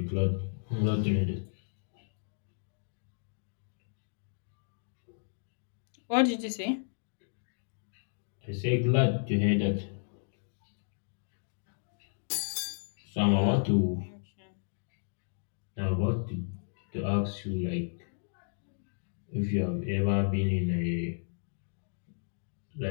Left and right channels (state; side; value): silent; right; digital silence